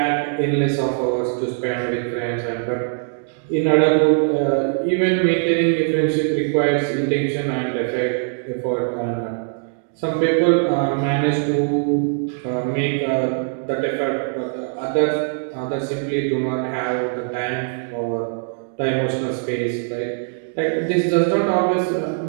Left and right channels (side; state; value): left; silent; digital silence